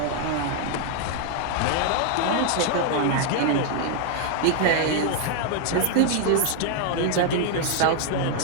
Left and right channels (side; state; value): both; different; correlation 0.00